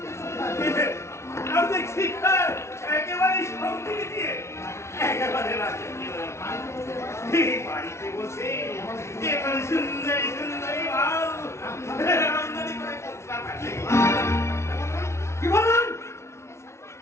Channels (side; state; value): right; late; 0.13 ms